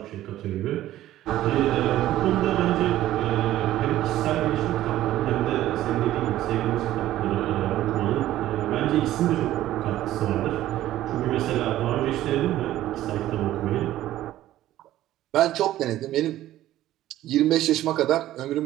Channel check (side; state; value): left; quieter; 14.0 dB